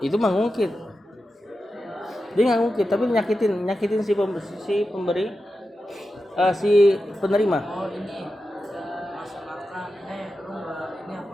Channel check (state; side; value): normal; both; correlation 0.91